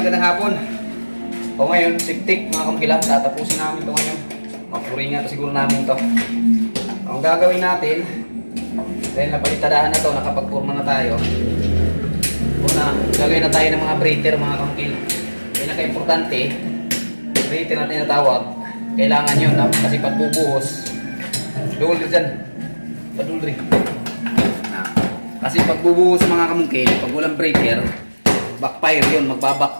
hapon. O ngayon, siptik mga kamukil, tatapusin namin ito ngayon. Mapuringan ito siguro namin ito. Ang gagawin natin, dahil napalitadaan na ito, nakapagpurma na tayo. Una, gagawin na tayo ng mga breather mga kamukil. Pinaka-importante, breather natin natawag. Kailangan yun, kasi pagbubuhos. Dulri dyan. Padulri. Kasi pagbubuhos mga kamukil, pag walang breather, backfire yun,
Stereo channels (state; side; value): inverted; both; correlation -1.00